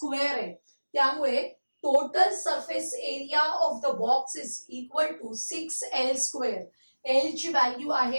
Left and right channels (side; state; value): both; inverted; correlation -1.00